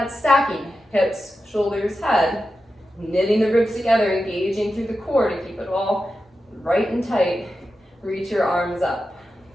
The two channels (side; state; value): both; normal; correlation 0.91